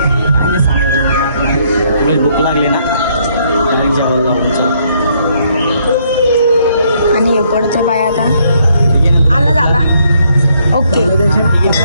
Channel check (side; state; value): both; inverted; correlation -0.70